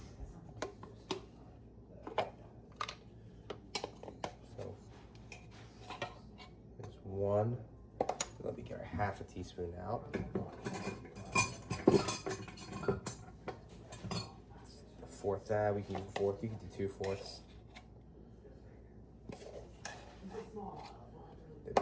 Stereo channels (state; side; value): identical; both; correlation 1.00